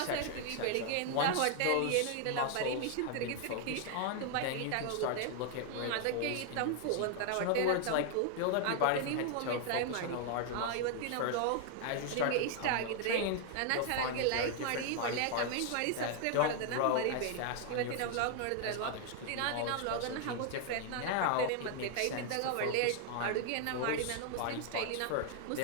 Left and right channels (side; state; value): both; different; correlation 0.00